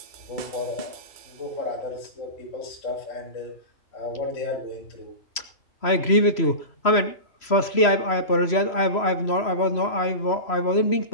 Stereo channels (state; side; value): late; right; 3.0 ms